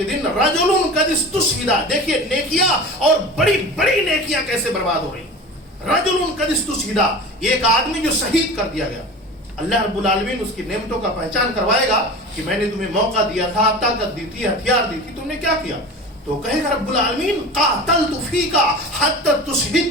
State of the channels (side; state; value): both; normal; correlation 0.34